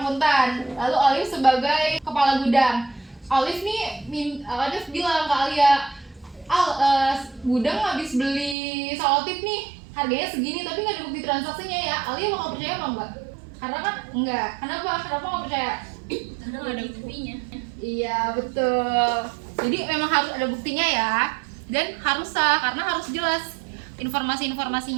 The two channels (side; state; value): left; drops out; at 8.6 s